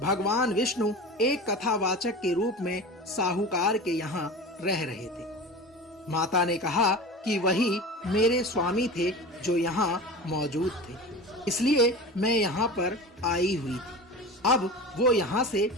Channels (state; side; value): normal; both; correlation 0.32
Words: विष्णु एक कथावाचक के रूप में साहूकार के यहाँ रह रहे थे। माता ने कहा कि वही मेरे स्वामी थे जो यहाँ मौजूद थे, इसलिए मैं यहाँ पर आई हुई थी। अब वो यहाँ से